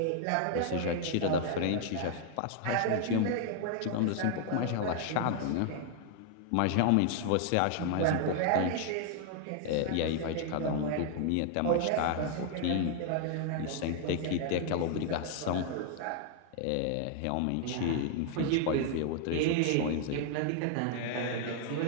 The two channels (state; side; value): different; both; correlation 0.00